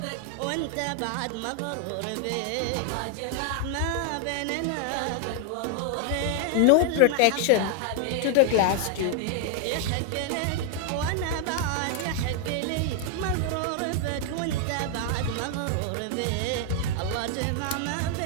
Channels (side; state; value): both; different; correlation 0.00